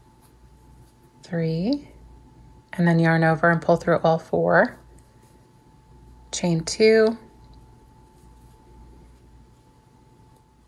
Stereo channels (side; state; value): both; identical; correlation 1.00